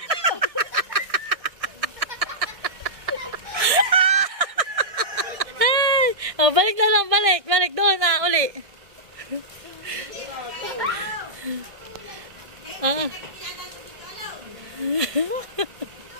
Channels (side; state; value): left; late; 1.6 ms